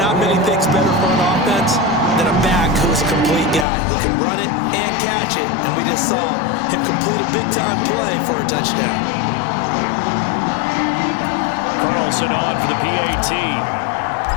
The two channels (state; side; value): drops out; right; at 3.7 s